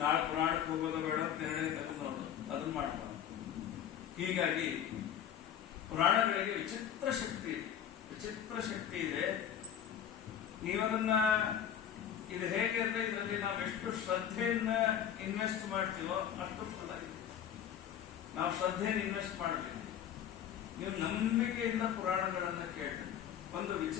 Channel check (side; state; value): right; quieter; 9.5 dB